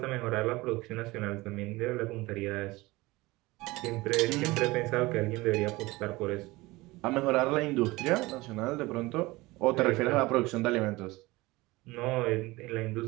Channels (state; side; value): quieter; left; 21.1 dB